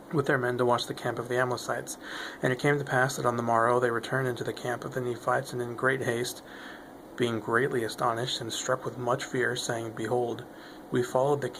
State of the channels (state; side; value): identical; both; correlation 1.00